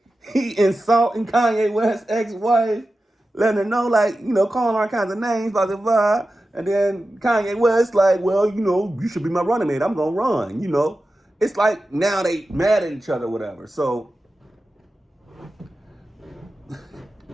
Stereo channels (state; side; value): normal; both; correlation 0.93